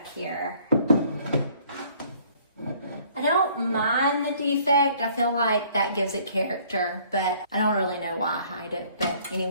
here. I don't mind the defect. I feel like that gives it character, but I don't really know why I hide it. But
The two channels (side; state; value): both; inverted; correlation -0.59